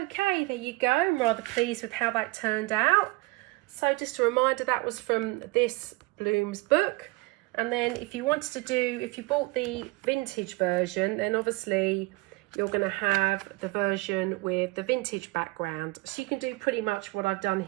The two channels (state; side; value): quieter; left; 24.0 dB